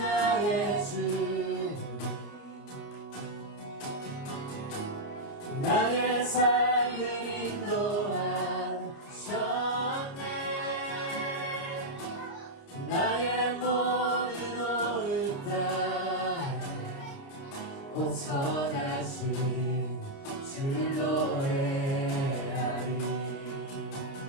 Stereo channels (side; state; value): right; late; 29 ms